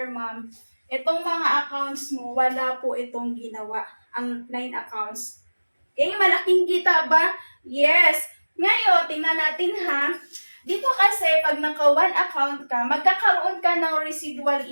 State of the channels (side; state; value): both; inverted; correlation -1.00